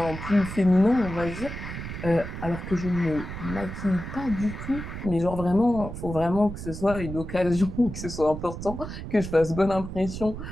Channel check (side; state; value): right; noise; rumble, 8 dB below the sound